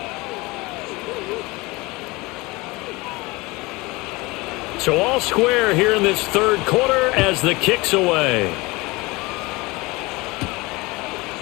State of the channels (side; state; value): right; quieter; 23.3 dB